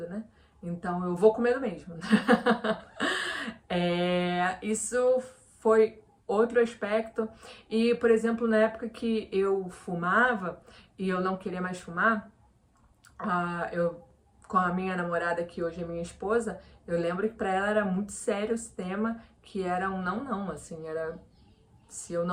né? Então eu vou com medo mesmo. Isso foi outro aspecto. E, por exemplo, na época que eu fumava e eu não queria mais fumar, eu com a minha namorada, que hoje é minha esposa, eu lembro que para ela era muito sério esse tema, que era um não, assim, era se eu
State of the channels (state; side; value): identical; both; correlation 1.00